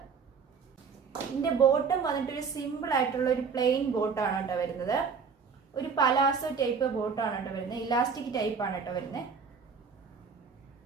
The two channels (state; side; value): quieter; left; 5.7 dB